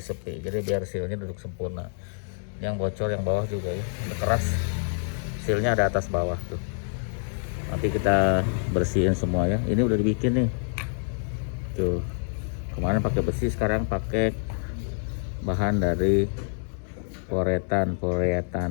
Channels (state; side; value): silent; right; digital silence